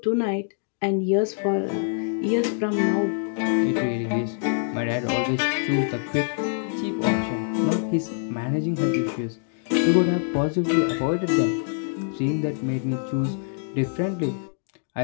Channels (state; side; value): silent; right; 62 dB below the other